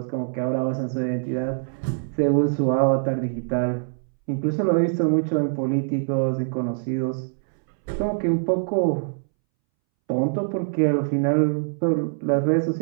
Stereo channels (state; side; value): silent; left; 63 dB below the other